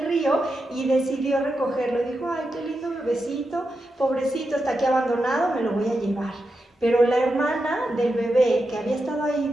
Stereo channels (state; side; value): normal; both; correlation 0.88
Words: río y decidió recogerlo. Dijo, ay, qué lindo bebecito, pobrecito, está aquí abandonado, me lo voy a llevar. Pero la hermana del bebé, que había estado ahí